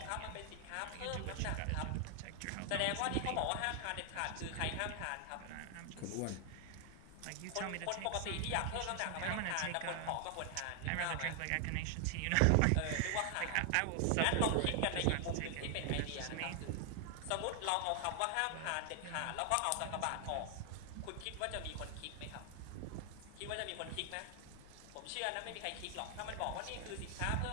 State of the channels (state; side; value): different; both; correlation 0.00